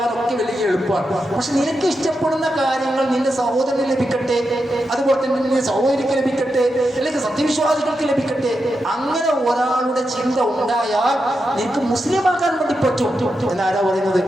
വലിയ എളുപ്പമാണ്. പക്ഷെ നിനക്ക് ഇഷ്ടപ്പെടുന്ന കാര്യങ്ങൾ നിന്റെ സഹോദരന് ലഭിക്കട്ടെ, അതുപോലെ തന്നെ നിന്റെ സഹോദരിക്ക് ലഭിക്കട്ടെ, അല്ലെങ്കിൽ സത്യവിശ്വാസികൾക്ക് ലഭിക്കട്ടെ. അങ്ങനെ ഒരാളുടെ ചിന്ത ഉണ്ടായാൽ നിനക്ക് മുസ്ലിമാകാൻ വേണ്ടി പറ്റും എന്നാരാ പറയുന്നത്?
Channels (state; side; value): normal; both; correlation 0.87